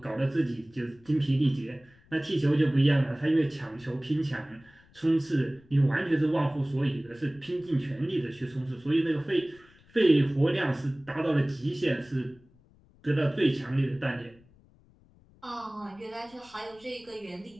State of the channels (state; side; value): noise; left; rumble, 28 dB below the sound